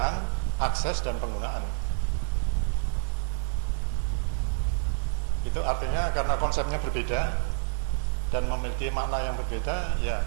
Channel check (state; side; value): silent; left; digital silence